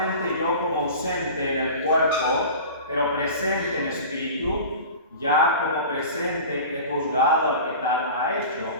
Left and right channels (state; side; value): inverted; both; correlation -0.36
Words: yo, como ausente en el cuerpo, pero presente en espíritu, ya como presente he juzgado al que tal ha hecho.